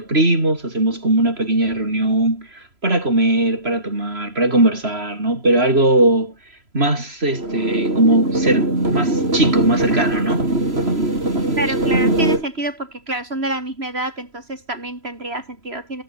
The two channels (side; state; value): left; late; 3.0 ms